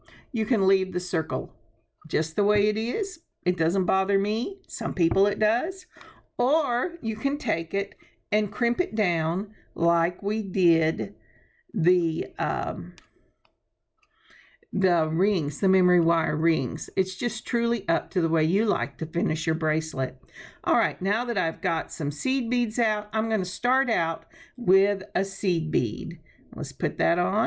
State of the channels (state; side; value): identical; both; correlation 1.00